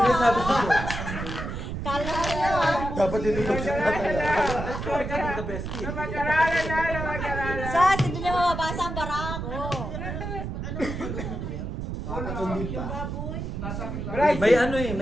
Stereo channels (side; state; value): right; noise; rumble, 5 dB below the sound